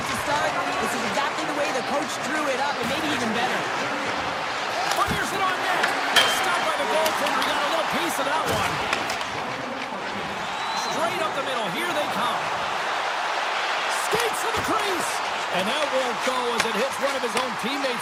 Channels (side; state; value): both; identical; correlation 1.00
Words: to start. This is exactly the way the coach drew it up, and maybe even better. Fires it on net. Stopped by the goaltender. He got a little piece of that one. Straight up the middle. Here they come. Skates to the crease. And that won't go as it hits one of his own